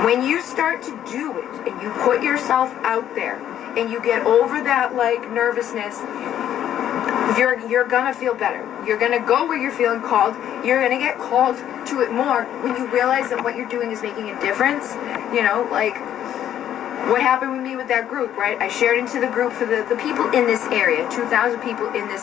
When you start to do it and you put yourself out there and you get over that, like, nervousness, you're gonna feel better. You're gonna go where you're feeling called. You're gonna get called to it more when you realize that what you're doing is making a difference. You know, like what happened with me with that group, right? I shared into the group for the people in this area, 2,000 people in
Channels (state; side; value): quieter; right; 10.8 dB